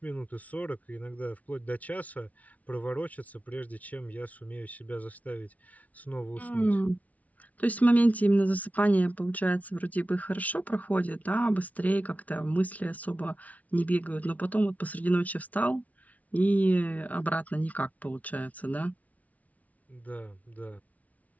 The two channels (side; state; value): right; late; 0.070 ms